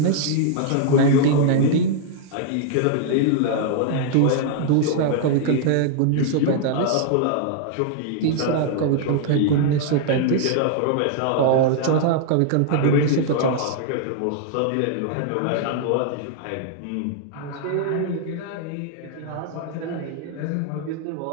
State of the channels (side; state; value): both; different; correlation -0.01